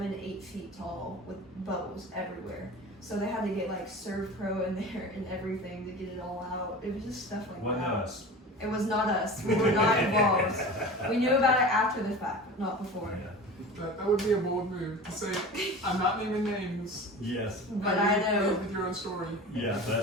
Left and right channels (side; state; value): both; normal; correlation 0.35